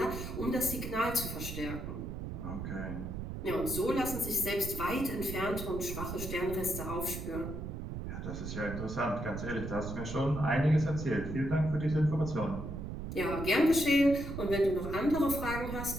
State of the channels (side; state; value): right; noise; rumble, 6 dB below the sound